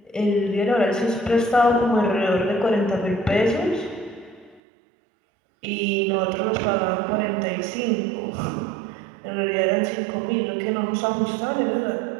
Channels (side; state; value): left; drops out; at 4.6 s